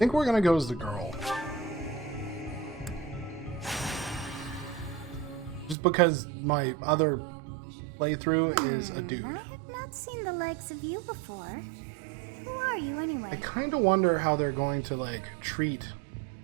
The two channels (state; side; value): drops out; left; at 5.8 s